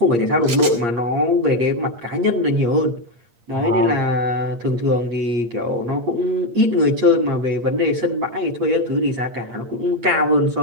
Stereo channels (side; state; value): left; late; 8.5 ms